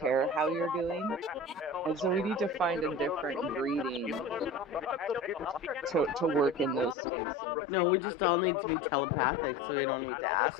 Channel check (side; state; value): right; drops out; at 7.0 s